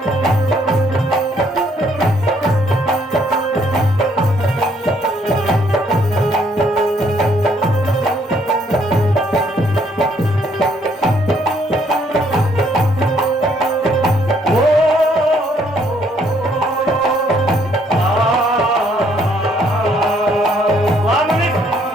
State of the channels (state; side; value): normal; both; correlation 0.68